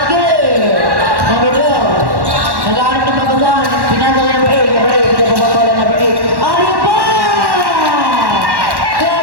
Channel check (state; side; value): late; left; 1.1 ms